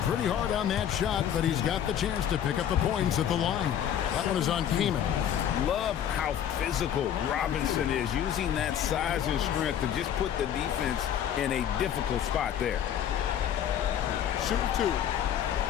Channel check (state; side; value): quieter; right; 9.7 dB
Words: hard on that shot, but he's got the chance to pick up the points at the line. That one is on Kamen. Love how physical Robinson is, using that size and strength to just put the defense in a difficult spot there. Shoot 2.